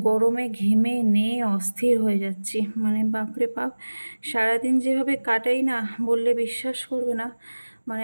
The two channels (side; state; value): both; inverted; correlation -1.00